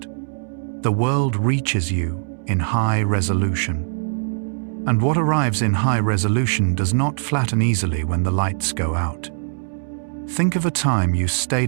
The world reaches you in high resolution. And what arrives in high resolution does not flatten easily when the lights go out. Think of a time you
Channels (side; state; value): left; silent; digital silence